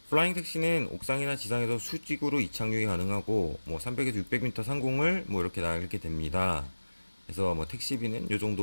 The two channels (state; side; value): inverted; both; correlation -1.00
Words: 플라잉 택시는 옥상이나 지상에서 수직으로 이착륙이 가능하고 뭐 300에서 600m 상공을 뭐 이렇게 날게 됩니다. 그래서 뭐 택시비는 요